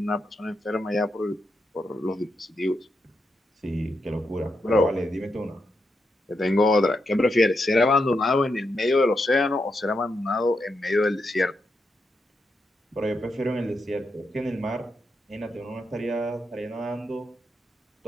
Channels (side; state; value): both; normal; correlation 0.84